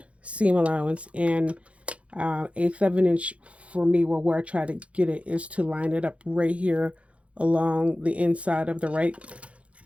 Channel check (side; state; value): left; late; 0.062 ms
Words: seam allowance, and 1/8 of an inch for me, well, where I try to get it is to line it up right here along the inside of the right